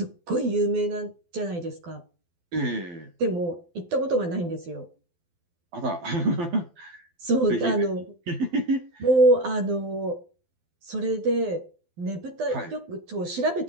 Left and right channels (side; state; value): left; late; 12 ms